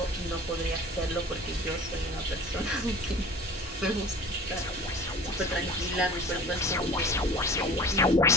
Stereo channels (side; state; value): both; normal; correlation 0.41